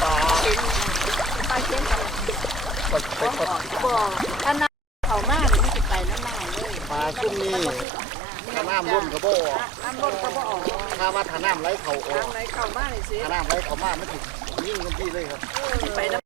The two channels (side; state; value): left; drops out; at 7.9 s